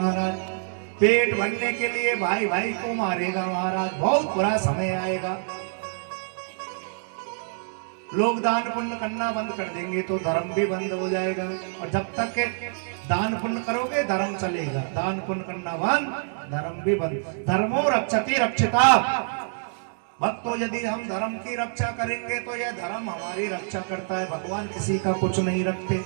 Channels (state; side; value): silent; left; digital silence